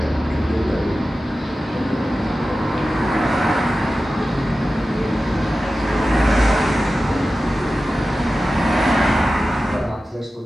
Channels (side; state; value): both; normal; correlation 0.94